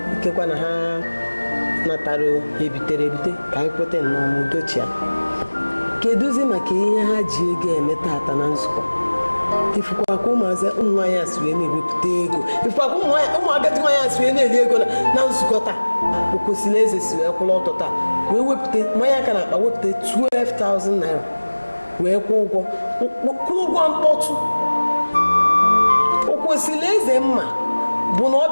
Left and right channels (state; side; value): inverted; both; correlation -1.00